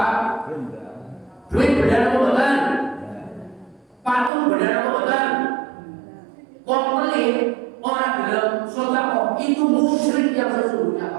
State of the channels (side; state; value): left; drops out; at 4.3 s